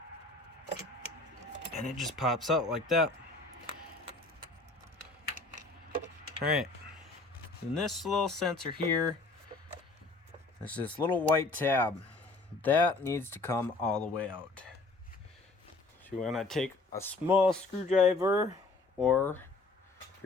And it just pops out like that. Alright, and this little sensor here, there's this little white tab. That needs to come all the way out. So you want to take a small screwdriver, or if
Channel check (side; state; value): right; quieter; 3.4 dB